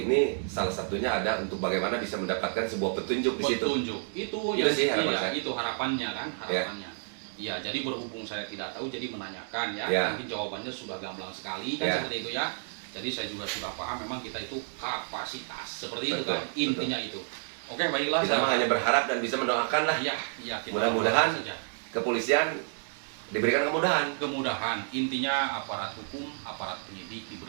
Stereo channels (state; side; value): silent; left; digital silence